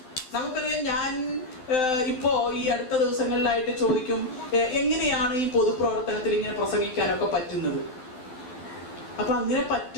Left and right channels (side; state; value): right; late; 12 ms